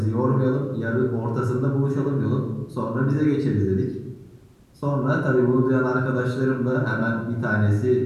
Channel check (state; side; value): identical; both; correlation 1.00